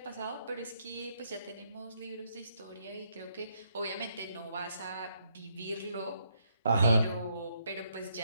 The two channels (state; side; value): inverted; both; correlation -0.74